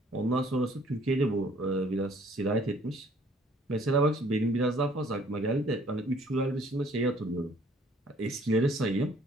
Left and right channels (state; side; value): normal; both; correlation 0.59